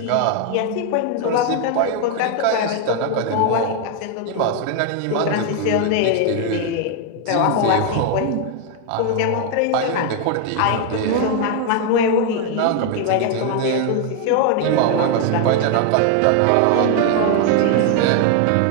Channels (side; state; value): both; different; correlation 0.00